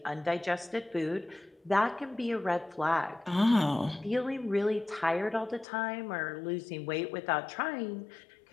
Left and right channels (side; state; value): right; drops out; at 5.7 s